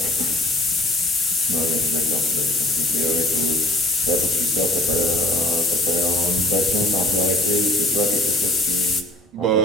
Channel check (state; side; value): normal; both; correlation 0.53